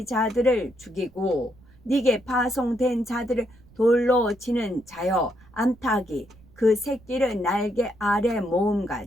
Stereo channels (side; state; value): right; noise; rumble, 26 dB below the sound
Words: 죽이고 네게 파송된 자들을 돌로 치는 자여 암탉이 그 새끼를 날개 아래